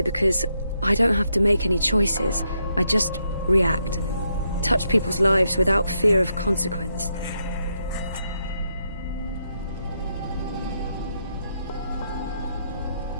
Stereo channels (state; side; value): inverted; both; correlation -0.80